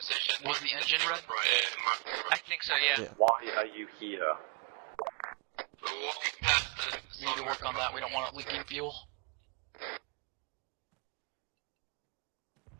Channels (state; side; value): quieter; left; 33.8 dB